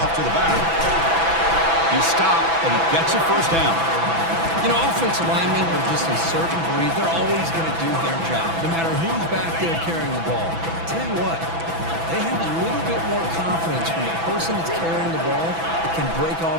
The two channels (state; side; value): late; left; 6.0 ms